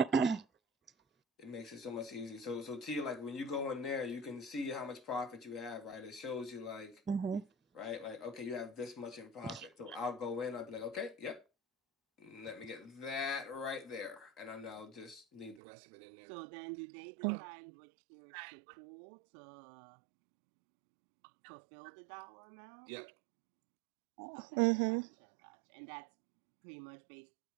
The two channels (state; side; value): drops out; left; at 15.6 s